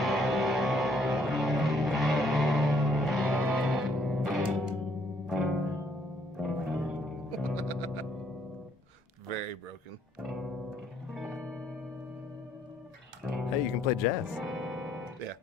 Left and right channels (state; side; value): normal; both; correlation 0.67